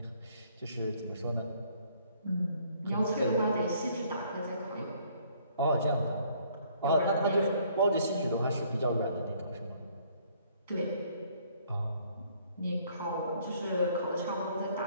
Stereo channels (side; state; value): both; inverted; correlation -0.62